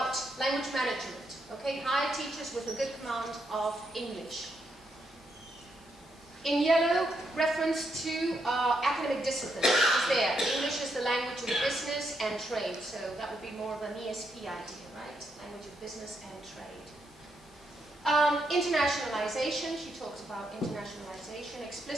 language management. Okay, hire teachers with a good command of English. In yellow, reference to academic discipline. It's there. English is the language of business and trade. So that would be more of an ESP idea, right? Language of business and trade. Internationalization. She talks about internationalization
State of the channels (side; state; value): both; normal; correlation 0.79